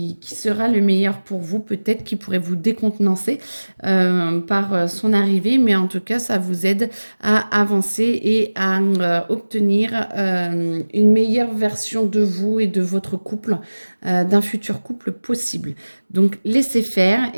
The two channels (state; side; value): inverted; both; correlation -1.00